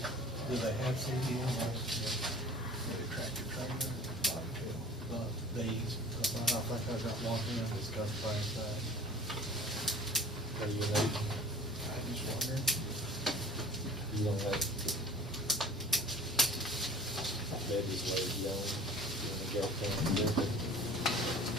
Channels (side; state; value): both; normal; correlation 0.44